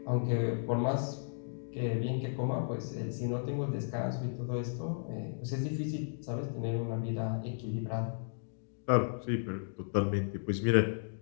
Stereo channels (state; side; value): silent; right; digital silence